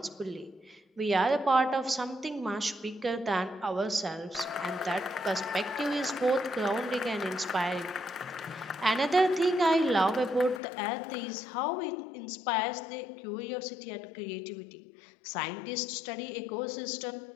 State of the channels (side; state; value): right; drops out; at 10.6 s